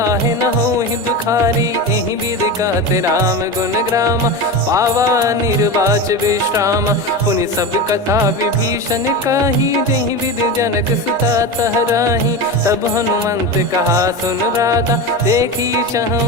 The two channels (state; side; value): normal; both; correlation 0.23